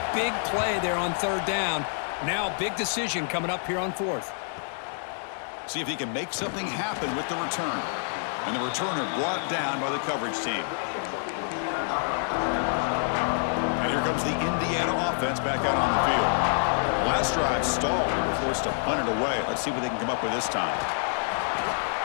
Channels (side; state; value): right; silent; digital silence